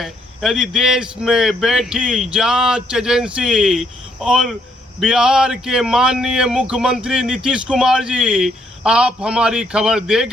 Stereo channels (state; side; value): normal; both; correlation 0.72